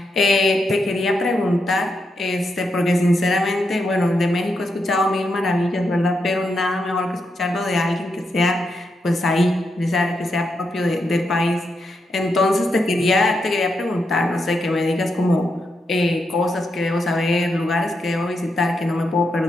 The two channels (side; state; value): both; normal; correlation 0.83